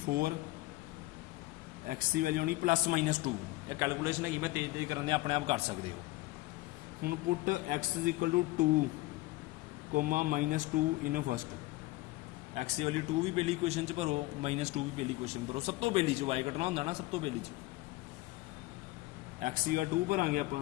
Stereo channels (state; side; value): quieter; right; 20.3 dB